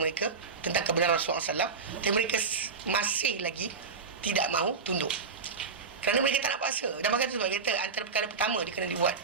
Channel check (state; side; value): quieter; left; 5.0 dB